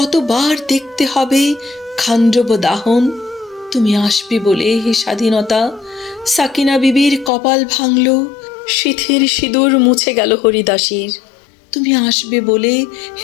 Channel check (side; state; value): right; drops out; at 7.3 s